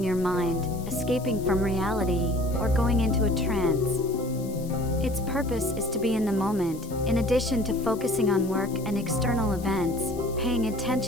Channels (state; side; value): noise; left; hiss, 19 dB below the sound